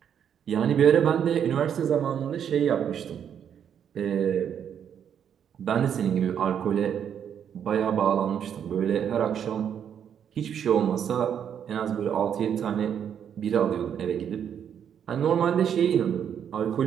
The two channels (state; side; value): quieter; left; 8.6 dB